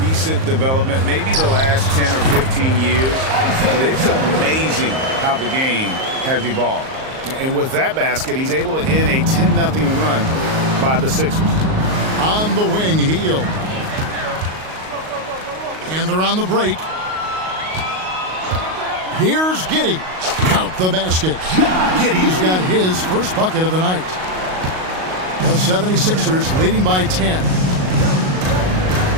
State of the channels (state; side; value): late; left; 38 ms